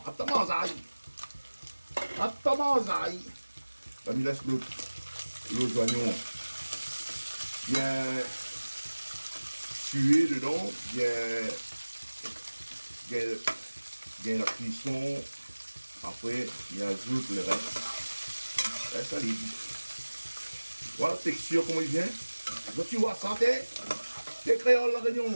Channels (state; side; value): inverted; both; correlation -1.00